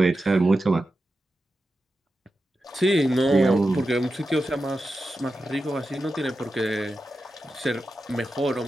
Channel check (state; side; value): normal; both; correlation 0.91